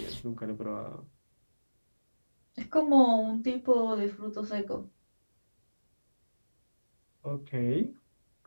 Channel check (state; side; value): inverted; both; correlation -1.00